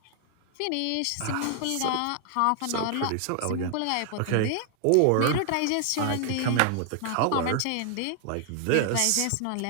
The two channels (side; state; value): both; different; correlation 0.00